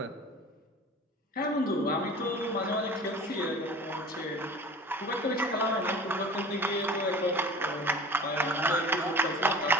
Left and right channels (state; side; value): normal; both; correlation 0.40